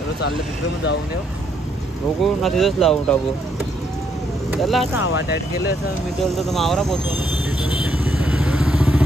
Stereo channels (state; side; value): normal; both; correlation 0.73